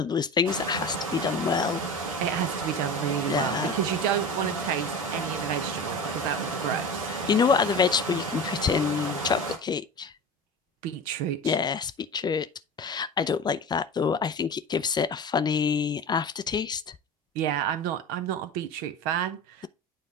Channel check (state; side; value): normal; both; correlation 0.30